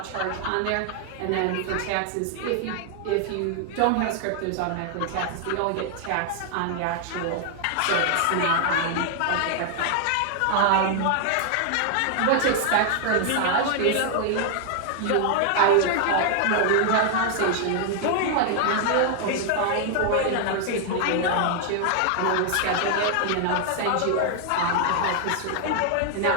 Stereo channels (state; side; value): different; both; correlation 0.00